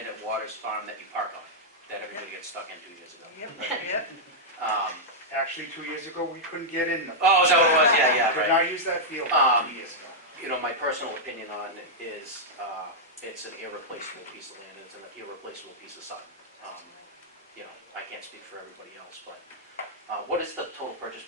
at Waters Farm that you park on, that everybody gets stuck in 2 years ago. Yep. Actually, 2 years ago, we couldn't get in the. Oh, is that what it was? Yeah, Could right. not use that field 2 years ago. You know, my personal opinion on it is it's an irreplaceable piece of land, it's an irreplaceable piece of Sutton. You know, I can't speak for everybody else, but what is the total purchase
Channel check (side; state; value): both; normal; correlation -0.06